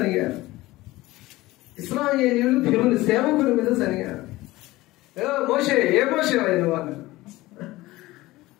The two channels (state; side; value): quieter; right; 18.6 dB